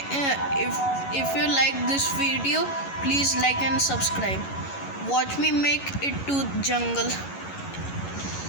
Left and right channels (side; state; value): right; late; 11 ms